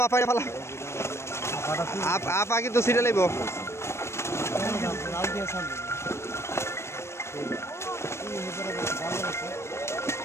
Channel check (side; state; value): right; late; 0.13 ms